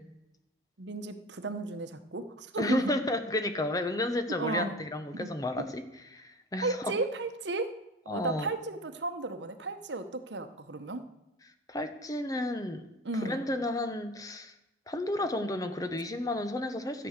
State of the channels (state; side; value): normal; both; correlation 0.38